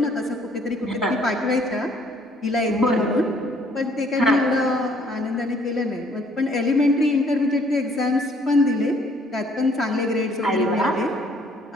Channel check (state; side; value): normal; both; correlation 0.62